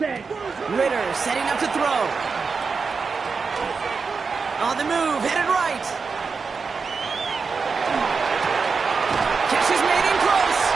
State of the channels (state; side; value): quieter; left; 5.0 dB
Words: Ritter setting up to throw. On the move, headed right. Catch is made in close.